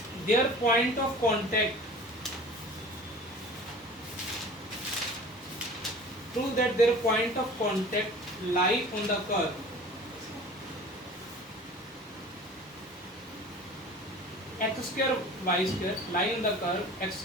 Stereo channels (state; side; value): normal; both; correlation 0.42